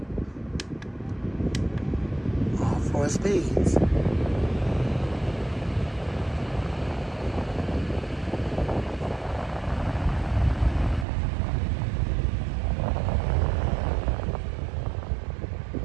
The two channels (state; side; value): drops out; left; at 11.1 s